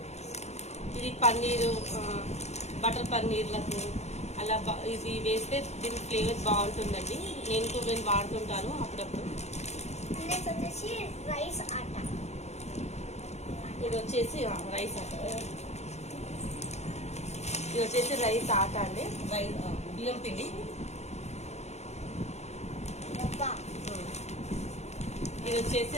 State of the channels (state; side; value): late; right; 0.32 ms